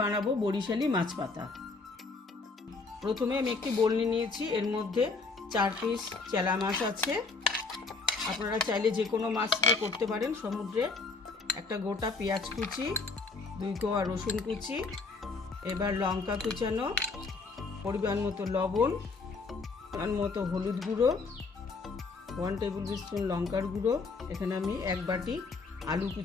বানাবো বরিশালি মাছ পাতা। প্রথমে আমি একটি বলনি নিয়েছি, এর মধ্যে 4 পিস চেলা মাছ আছে। আপনারা চাইলে যে কোনো মাছ দিয়ে করতে পারেন। সমুদ্রের একটা গোটা পেঁয়াজ কুচি, 2 কোয়া রসুন কুচি, এবার লঙ্কা কুচানো, পরিমাণ মতো লবণ, পরিমাণ মতো হলুদ গুঁড়ো, 1 টেবিল স্পুন লঙ্কার গুঁড়ো। এখানে আমি 1 বাটি আলু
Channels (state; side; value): quieter; right; 4.0 dB